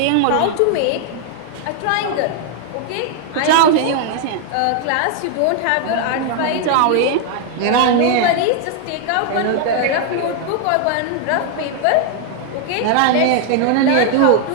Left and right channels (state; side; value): different; both; correlation 0.00